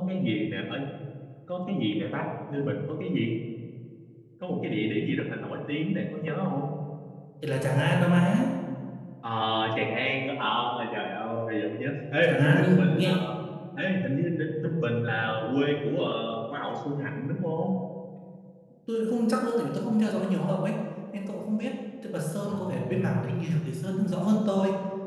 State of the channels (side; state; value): both; identical; correlation 1.00